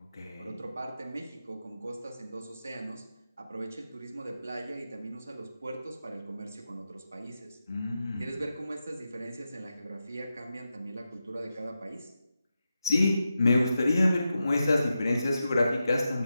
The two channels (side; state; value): both; inverted; correlation -0.90